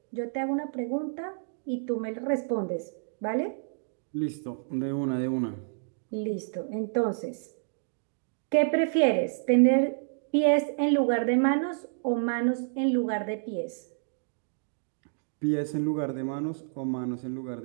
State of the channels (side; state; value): left; silent; digital silence